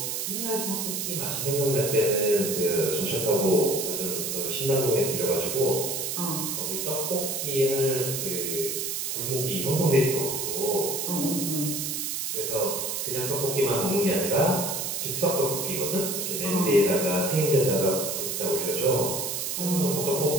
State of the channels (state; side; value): noise; right; hiss, 2 dB below the sound